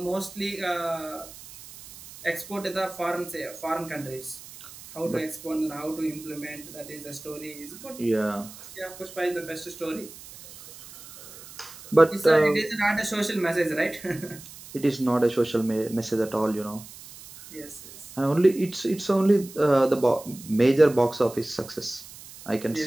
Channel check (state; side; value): noise; right; hiss, 17 dB below the sound